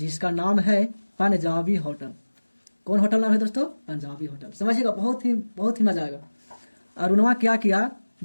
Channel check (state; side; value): inverted; both; correlation -1.00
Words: नाम है पंजाबी होटल। कौन होटल नाम है दोस्तों? पंजाबी होटल। समझिएगा, बहुत ही मजा आएगा। अरुणवा क्या किया,